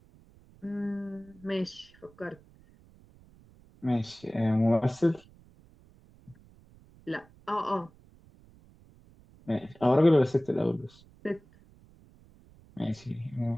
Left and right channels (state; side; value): noise; right; rumble, 26 dB below the sound